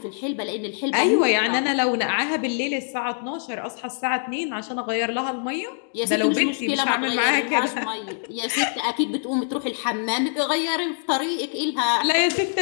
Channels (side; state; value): right; silent; digital silence